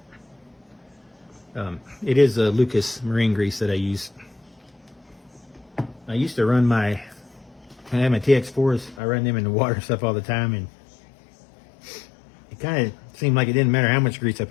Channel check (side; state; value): right; drops out; at 9.0 s